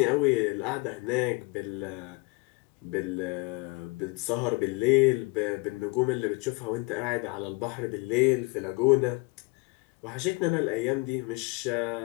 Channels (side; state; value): right; quieter; 28.5 dB